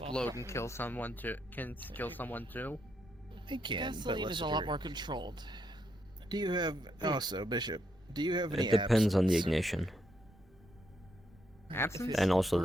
and kill someone too. Can kill someone too. It can, but Gasoline less is a lot true. more controlled. Do you have also, Bishop? Do you have any? It depends on the absence? ignition Absence? and also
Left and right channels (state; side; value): normal; both; correlation 0.78